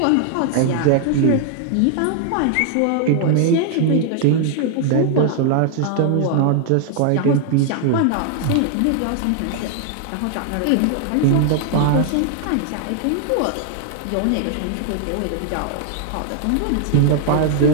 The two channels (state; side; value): different; both; correlation 0.00